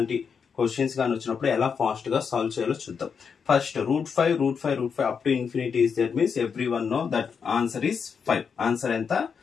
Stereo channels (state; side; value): quieter; right; 6.3 dB